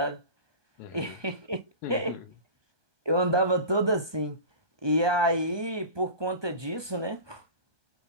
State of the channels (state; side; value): late; left; 1.2 ms